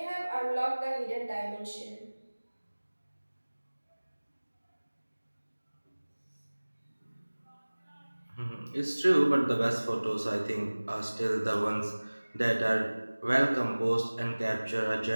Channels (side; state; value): both; inverted; correlation -1.00